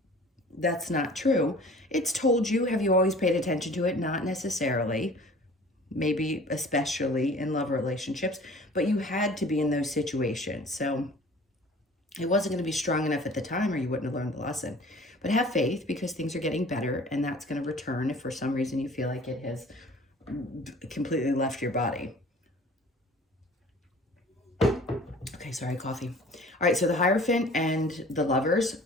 That's not true. It's told you. Have you always paid attention to it? Not necessarily. Maybe especially in love relationships, but you had to be in those situations. So it wasn't going to be strong enough at the time or you wouldn't have learned the lesson. But have faith because things are getting better and that's going to return if for some reason you feel like it has completely left your body. Okay, sorry, coffee. All right, so the Hierophant and the Lovers.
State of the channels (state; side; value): normal; both; correlation 0.47